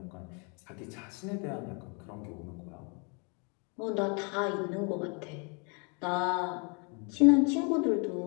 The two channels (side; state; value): right; quieter; 34.9 dB